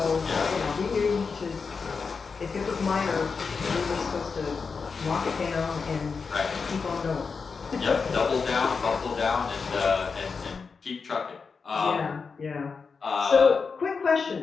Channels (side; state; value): right; quieter; 5.1 dB